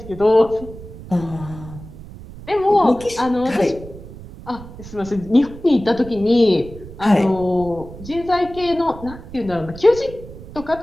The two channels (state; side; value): noise; right; rumble, 15 dB below the sound